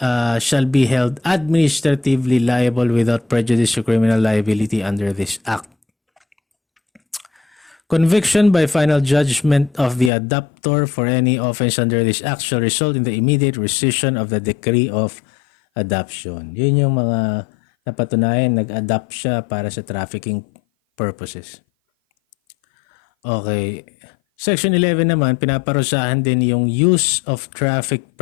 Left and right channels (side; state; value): right; drops out; at 10.1 s